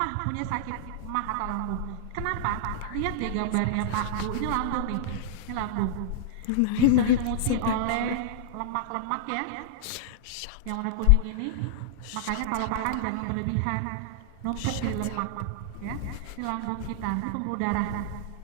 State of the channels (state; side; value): different; both; correlation -0.01